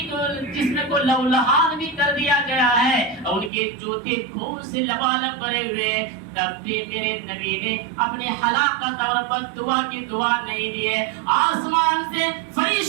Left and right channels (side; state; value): left; drops out; at 3.5 s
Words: کو جسم کو لہولہان بھی کر دیا گیا ہے، ان کے جوتے خون سے لبالب بھرے ہوئے، تب بھی میرے نبی نے اپنے ہلاکت اور بد دعا کی دعا نہیں دی ہے۔ آسمان سے